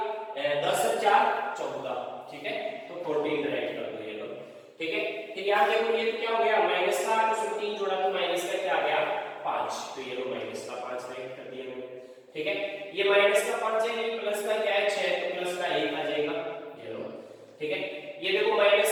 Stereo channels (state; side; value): identical; both; correlation 1.00